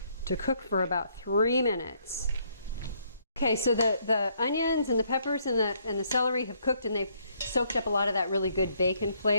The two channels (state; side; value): inverted; both; correlation -0.69